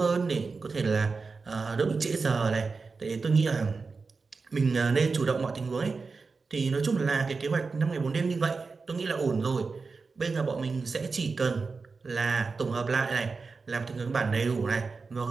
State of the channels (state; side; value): quieter; left; 4.4 dB